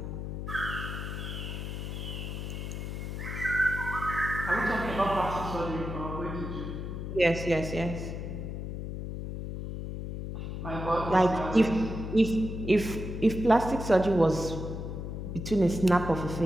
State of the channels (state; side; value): noise; left; hum, 6 dB below the sound